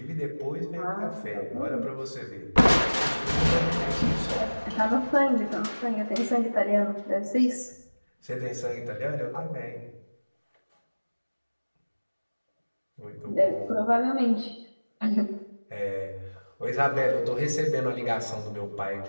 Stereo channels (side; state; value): both; inverted; correlation -1.00